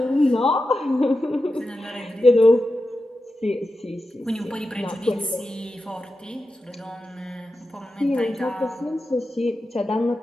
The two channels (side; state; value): both; normal; correlation 0.91